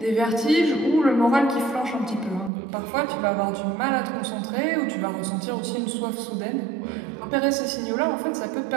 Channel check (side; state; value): left; drops out; at 2.5 s